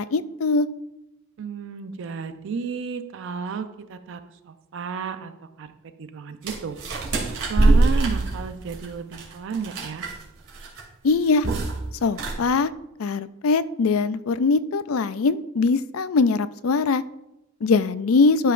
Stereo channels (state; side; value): normal; both; correlation 0.32